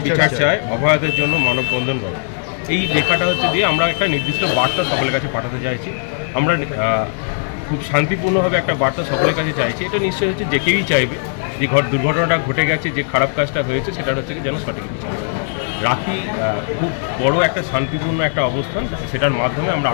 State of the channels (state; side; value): silent; right; digital silence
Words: বিচার চায়, অভয়াদের জন্য মানববন্ধন করো। এই লেখাটা হচ্ছে দিয়ে আমরা একটা নির্দিষ্ট বার্তা সকলের কাছে পাঠাতে চাইছি। আমরা খুব শান্তিপূর্ণভাবে একটা বার্তা সকলের কাছে চাইছি। এটা নিশ্চয়ই হচ্ছে যে কেউই চাইবে যে দুর্ঘটনাটা ঘটে গেছে, যে খারাপ কাজটা হয়েছে, সেটা হচ্ছে কি যেন সঠিক বিচার। রাখি খুব বড় একটা শান্তিপূর্ণ একটা অবস্থান, সেটার মাধ্যমে আমরা